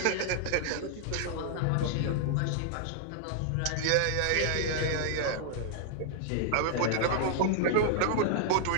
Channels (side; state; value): both; different; correlation -0.01